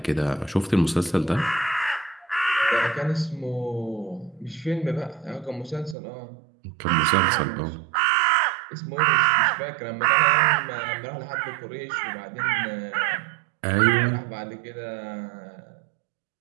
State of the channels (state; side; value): drops out; left; at 6.0 s